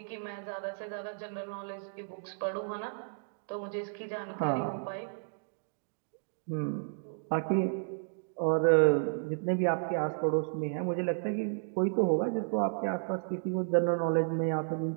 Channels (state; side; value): silent; left; digital silence